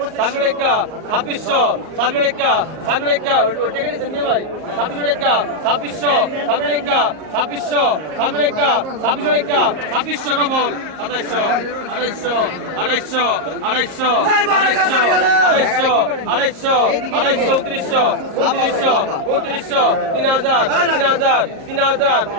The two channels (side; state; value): left; late; 38 ms